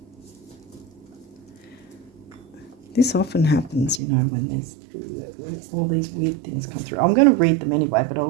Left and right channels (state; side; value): drops out; left; at 4.0 s